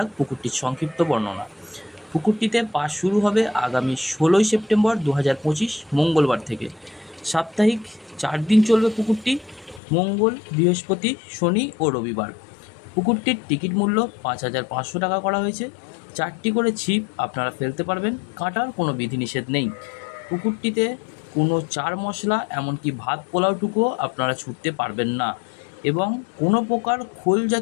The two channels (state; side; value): drops out; right; at 9.8 s